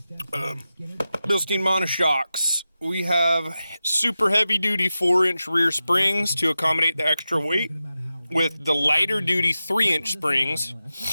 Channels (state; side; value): inverted; both; correlation -0.92